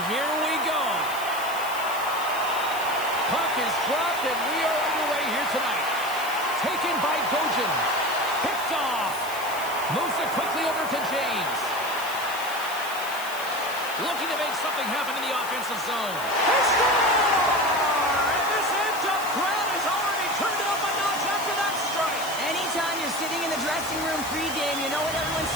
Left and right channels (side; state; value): left; noise; hiss, 12 dB below the sound